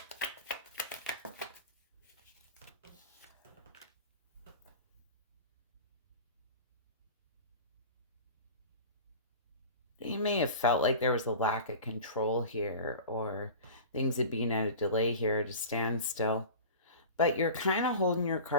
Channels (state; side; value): inverted; both; correlation -0.36